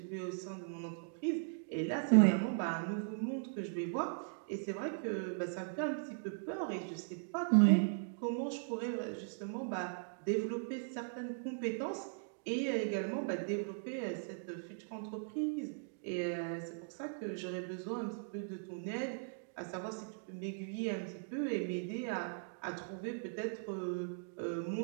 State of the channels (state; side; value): silent; left; digital silence